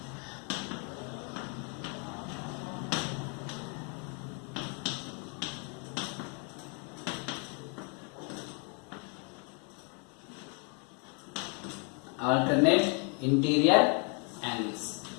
Alternate interior angles.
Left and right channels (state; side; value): quieter; right; 36.6 dB